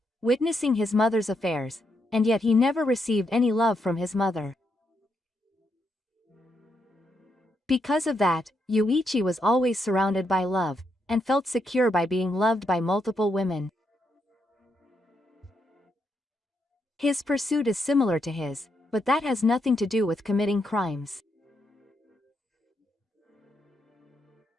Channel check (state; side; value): normal; both; correlation 0.80